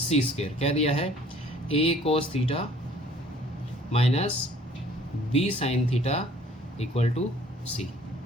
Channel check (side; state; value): both; normal; correlation 0.55